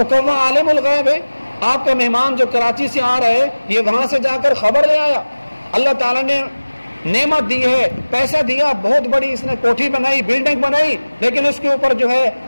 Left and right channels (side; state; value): both; inverted; correlation -1.00